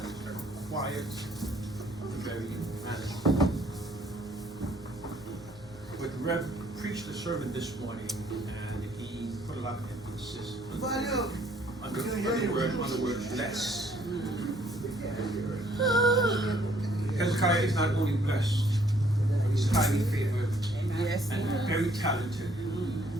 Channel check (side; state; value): both; normal; correlation 0.63